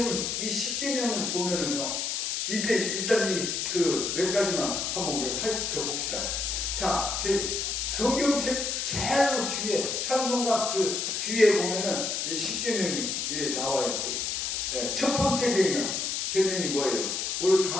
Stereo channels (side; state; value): left; noise; hiss, 1 dB below the sound